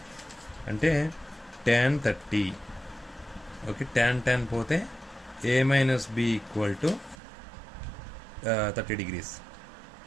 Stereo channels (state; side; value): drops out; left; at 7.2 s